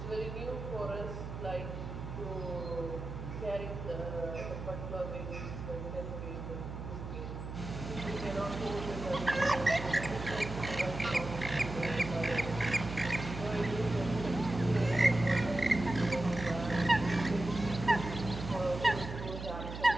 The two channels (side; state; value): right; noise; hum, 8 dB below the sound